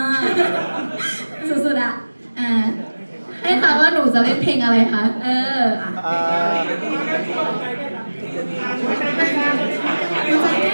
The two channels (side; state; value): both; inverted; correlation -1.00